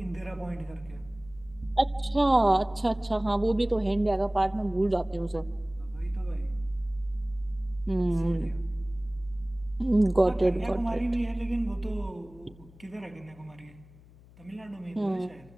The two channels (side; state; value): left; noise; hum, 24 dB below the sound